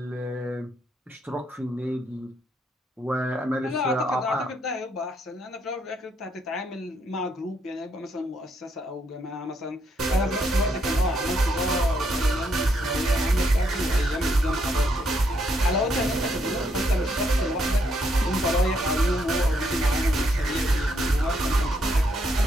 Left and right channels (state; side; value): normal; both; correlation 0.75